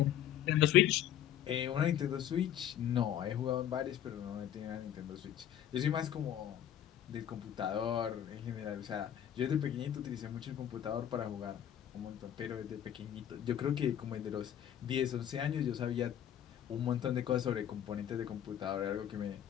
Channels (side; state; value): right; quieter; 10.6 dB